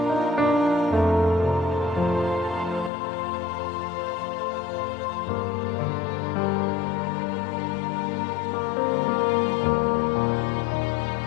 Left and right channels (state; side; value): drops out; right; at 2.9 s